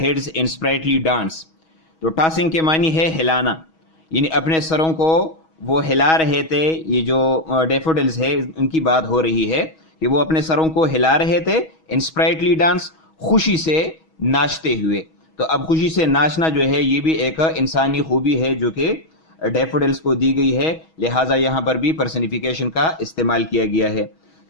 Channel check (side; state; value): right; late; 6.2 ms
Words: in sprightly dance. تو ٹاسنگ کے معنی ہے ہلانا، یعنی اپنے سروں کو وہ ہلا رہے تھے. یہ جو ڈیفوڈلز ہے ان کی بات ہو رہی ہے کہ وہ اپنے سروں کو ہلا رہے تھے ان اسپرائٹلی ڈانس، خوشی سے ناچتے ہوئے. تو اب خوشی سے ناچنا جو ہے یہ بھی ایک انسانی خوبی ہے جو کہ ڈیفوڈلز کو دی گئی ہے، لہٰذا یہاں پر بھی پرسنیفیکیشن کا استعمال کیا گیا ہے.